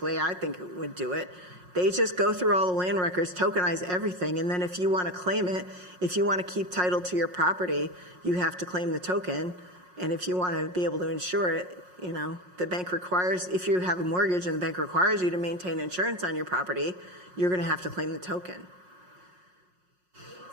I think it would do it. They just go through all the land records, tokenize everything, and then if you want to claim it, if you want to keep title to your property, you have to claim the token. And if you want to be able to insure it, the bank requires, if you have a mortgage and the bank requires you to maintain insurance on your property, you're going to have to claim the token. You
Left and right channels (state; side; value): late; left; 5.5 ms